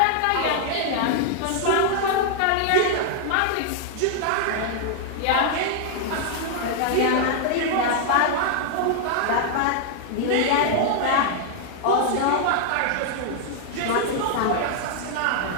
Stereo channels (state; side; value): different; both; correlation 0.00